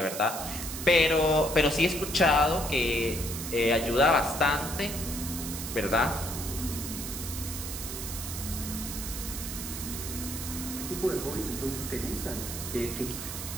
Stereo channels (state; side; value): noise; right; hiss, 7 dB below the sound